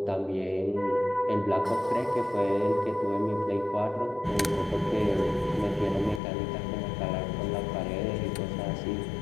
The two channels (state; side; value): drops out; right; at 6.2 s